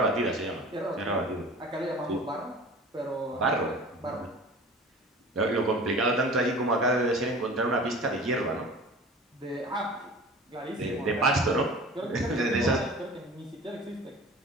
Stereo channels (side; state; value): both; normal; correlation 0.41